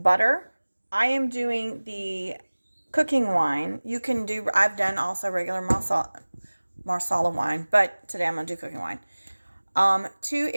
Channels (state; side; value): inverted; both; correlation -1.00